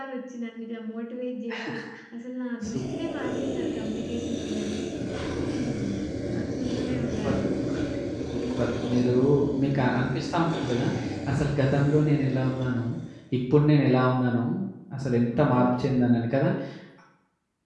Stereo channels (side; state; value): both; identical; correlation 1.00